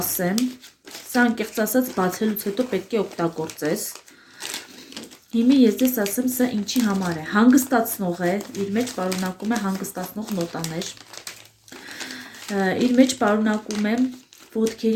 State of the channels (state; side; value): identical; both; correlation 1.00